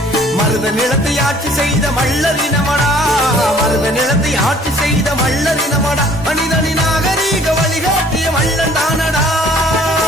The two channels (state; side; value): normal; both; correlation 0.55